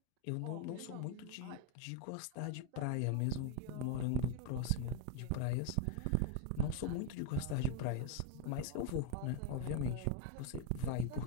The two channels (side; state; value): both; different; correlation 0.02